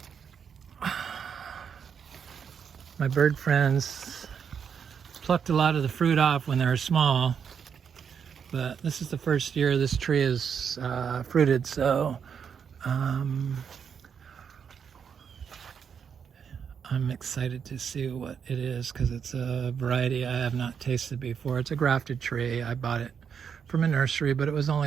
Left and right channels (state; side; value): quieter; left; 7.1 dB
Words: My bird friends plucked a lot of the fruit off when they were small, but this is the first year this tree is fruited, so I'm excited to see what it is because it's a variety I have not tasted before. It's a grafted tree. I bought it from a nursery, but it was